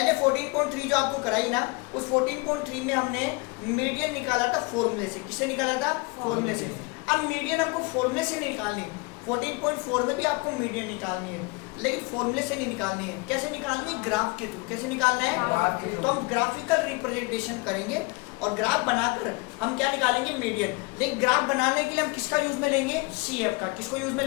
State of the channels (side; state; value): right; quieter; 27.7 dB